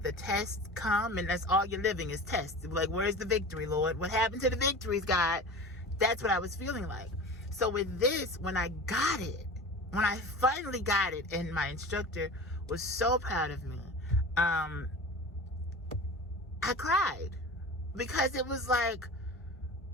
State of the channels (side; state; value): both; normal; correlation 0.35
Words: the tests come and that's all you're living is tests. Like, where's the victory, Lord? What happened to the victories, God? That's what I was feeling like. So with this, when I finally got it, and my instructor was so proud of me, I cried. Because it was like,